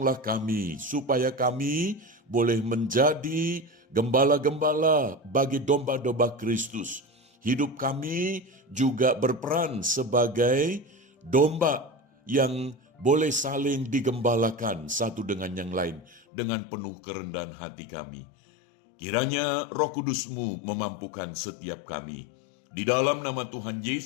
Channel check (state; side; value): drops out; right; at 16.2 s